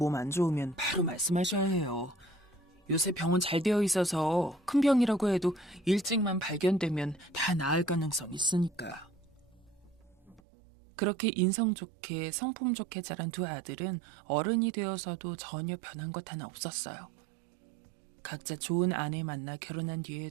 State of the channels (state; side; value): drops out; left; at 10.4 s